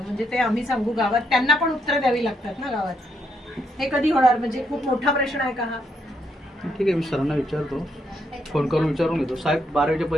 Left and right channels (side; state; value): both; normal; correlation 0.76